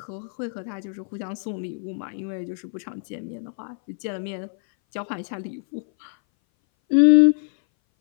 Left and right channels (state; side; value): silent; right; 59 dB below the other